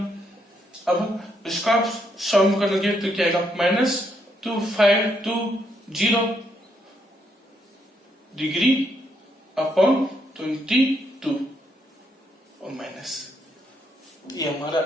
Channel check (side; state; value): both; normal; correlation 0.76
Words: अब इसका सम करोगे तो क्या आएगा? -2520 डिग्री अपॉन 22 और माइनस। ये हमारा